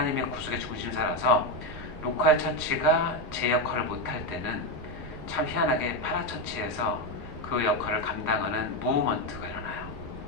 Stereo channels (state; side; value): normal; both; correlation 0.10